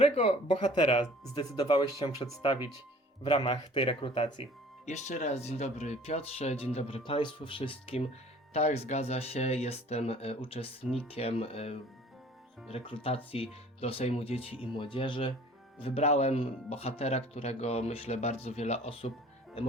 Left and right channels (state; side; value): normal; both; correlation 0.50